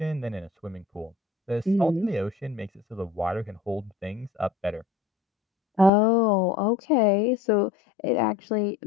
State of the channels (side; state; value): right; drops out; at 5.9 s